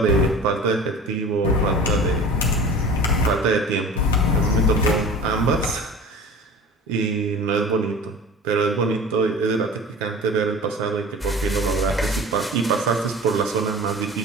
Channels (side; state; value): both; normal; correlation 0.40